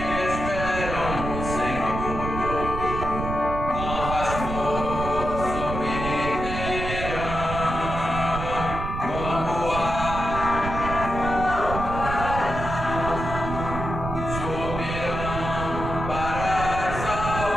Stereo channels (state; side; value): noise; right; rumble, 5 dB below the sound